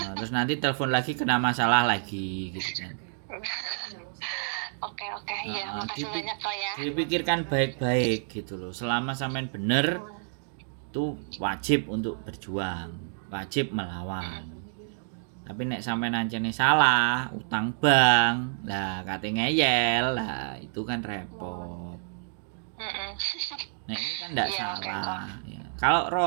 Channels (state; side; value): silent; left; digital silence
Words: terus nanti telepon lagi kena masalah lagi gitu kan. Oke, ya makasih banyak kok ya. Dipikirkan baik-baik gitu loh. Selama sampean bener, itu wajib untuk berjuang, wajib melawan. Tapi nek sampean nancene salah, utang bank, lah kate ngeyel, lah itu kan repot. Nek ini kan enggak salah. Ya. Kalau